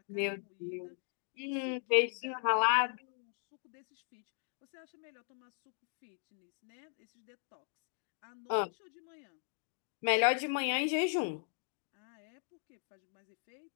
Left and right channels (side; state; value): right; silent; digital silence